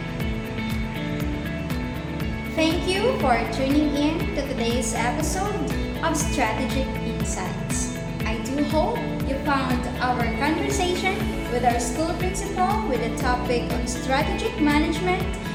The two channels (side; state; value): both; identical; correlation 1.00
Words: Thank you for tuning in to today's episode of Strategic Insights. I do hope you found our conversation with our school principal with the topic on strategic management